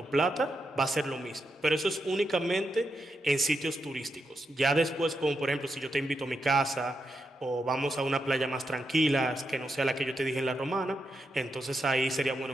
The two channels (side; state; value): both; normal; correlation 0.84